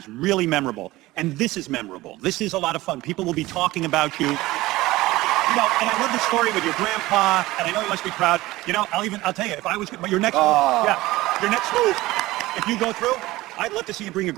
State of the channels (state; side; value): quieter; left; 18.4 dB